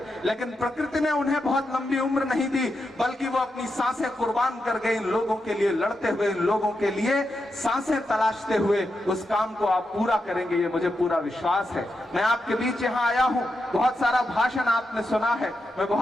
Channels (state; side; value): normal; both; correlation 0.86